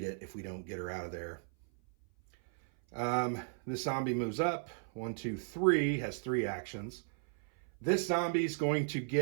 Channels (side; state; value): left; silent; 54 dB below the other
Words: it if we don't get her out of there. This zombie moves up. 1, 2, 3, has 3 actions. This zombie's going to